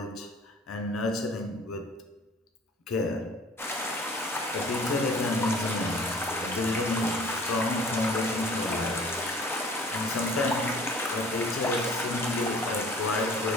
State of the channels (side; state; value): both; normal; correlation 0.50